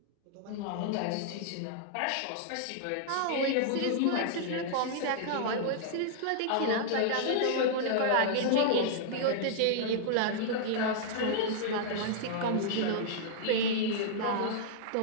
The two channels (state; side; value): different; both; correlation -0.01